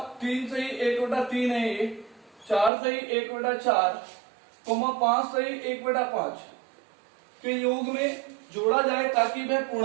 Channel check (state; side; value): drops out; left; at 2.7 s